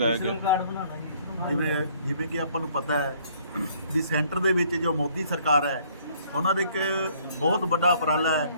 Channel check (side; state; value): both; inverted; correlation -0.61